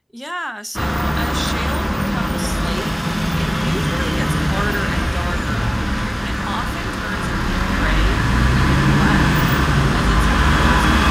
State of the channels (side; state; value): both; identical; correlation 1.00